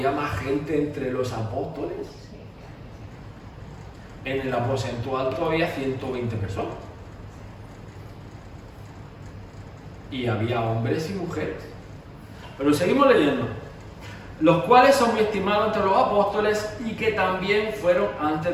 más gente entre los apóstoles? En el aposento alto había 120 personas. Y había hombres y mujeres. Pero seguimos leyendo. los cuales son muy estimados entre los apóstoles y que también fueron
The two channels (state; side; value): identical; both; correlation 1.00